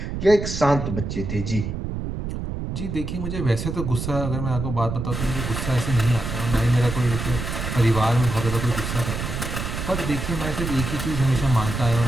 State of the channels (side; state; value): right; noise; rumble, 4 dB below the sound